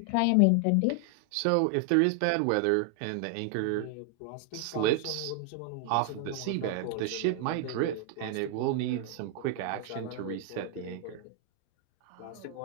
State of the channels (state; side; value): different; both; correlation 0.00